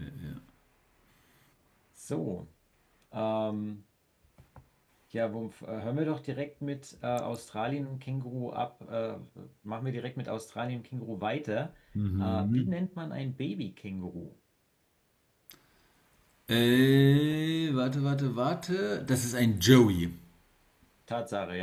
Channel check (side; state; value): both; identical; correlation 1.00